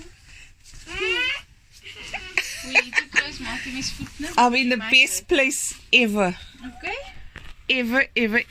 I'm in the best place ever. Okay.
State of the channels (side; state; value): both; identical; correlation 1.00